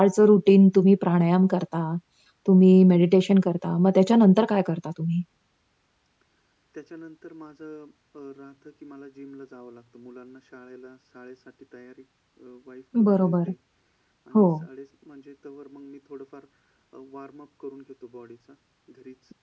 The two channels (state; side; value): identical; both; correlation 1.00